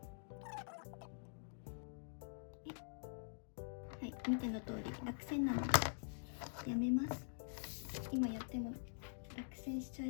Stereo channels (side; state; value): right; silent; digital silence